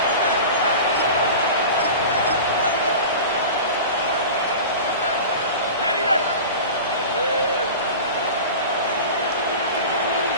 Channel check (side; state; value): both; inverted; correlation -0.33